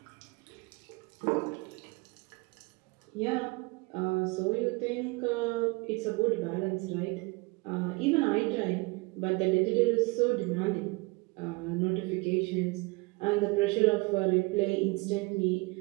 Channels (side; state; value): left; quieter; 26.0 dB